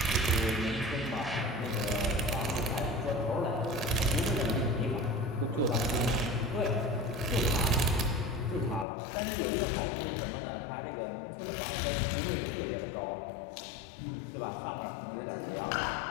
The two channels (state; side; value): drops out; right; at 8.8 s